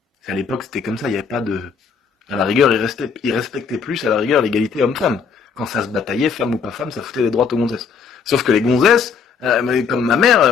À l'époque, c'était comme ça, il n'y avait pas de... À la rigueur, il respectait plus, à la rigueur, l'égalité homme-femme. Quand ça se bataillait, femme ou pas femme, ça foutait des droites aux gonzesses. Sauf que les gonzesses, comme ma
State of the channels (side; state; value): right; quieter; 6.0 dB